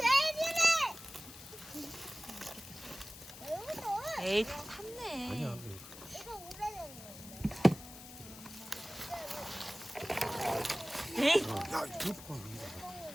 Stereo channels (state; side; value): noise; left; hiss, 15 dB below the sound